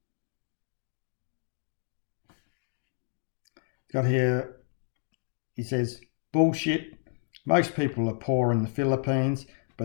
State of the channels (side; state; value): right; silent; digital silence